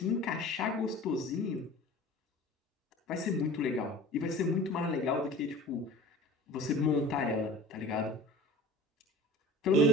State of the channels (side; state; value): both; normal; correlation 0.40